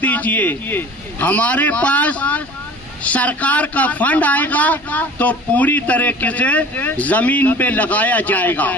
دیجئے۔ ہمارے پاس سرکار کا فنڈ آئے گا تو پوری طریقے سے زمین پہ لگایا جائے گا،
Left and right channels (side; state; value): both; normal; correlation 0.44